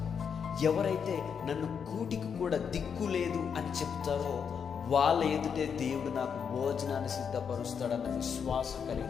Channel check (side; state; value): right; quieter; 6.9 dB